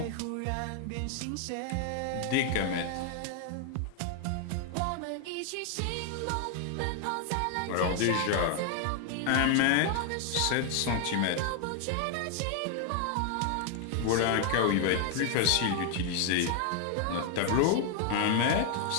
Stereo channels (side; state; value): both; different; correlation 0.00